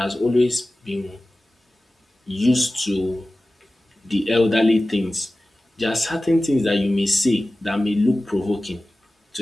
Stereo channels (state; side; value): normal; both; correlation 0.96